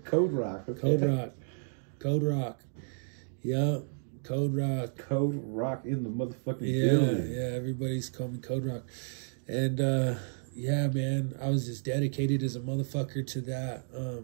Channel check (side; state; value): left; silent; digital silence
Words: Code Rock. Okay. Code Rock. Yeah, Code Rock. Code Rock in the motherfucking building. Yeah, everybody's calling me Code Rock, and yeah, man, I was just dedicated as a motherfucker to that.